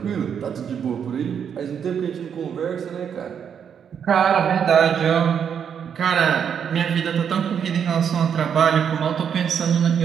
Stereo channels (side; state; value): left; quieter; 7.8 dB